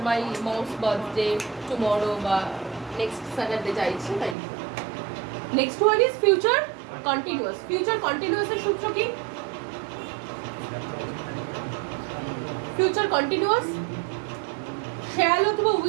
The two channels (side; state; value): left; drops out; at 4.4 s